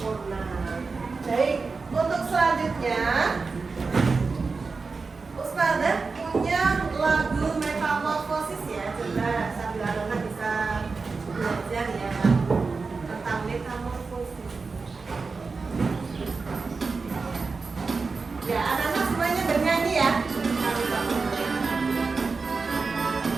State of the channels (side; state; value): left; quieter; 4.4 dB